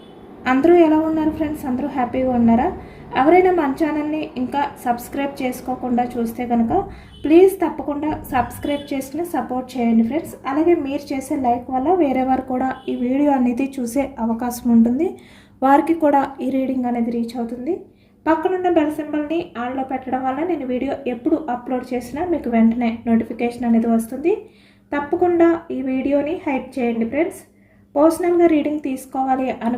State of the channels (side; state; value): both; identical; correlation 1.00